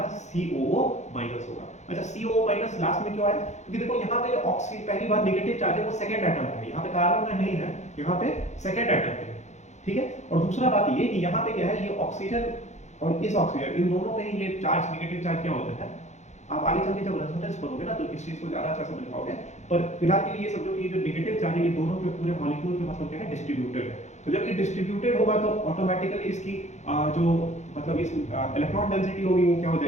COO माइनस होगा। अच्छा COO माइनस लास्ट में क्यों आया? क्योंकि देखो यहाँ पे ऑक्सीजन पहली बार नेगेटिव चार्ज है वो सेकंड एटम है, यहाँ पे कार्बन का नहीं है, यहाँ पे सेकंड एटम है, ठीक है। और दूसरा बात ये कि यहाँ पे क्या है, ये ऑक्सीजन और इस ऑक्सीजन इन दोनों में ही ये चार्ज नेगेटिव चार्ज क्या होता है, आप आगे चल के जब रेजोनेंस पढ़ोगे ना तो इस चीज को ज्यादा अच्छा समझ पाओगे। पर फिलहाल के लिए ये समझो कि ये जो नेगेटिव चार्ज है ये दोनों के पूरे मॉलिक्यूल के मतलब क्या है, डिस्ट्रीब्यूटेड है। तो जब ये डिस्ट्रीब्यूटेड होगा तो ऑटोमेटिकली इसकी जो मतलब इस इलेक्ट्रॉन डेंसिटी होगी वो क्या हो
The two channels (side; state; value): right; late; 0.33 ms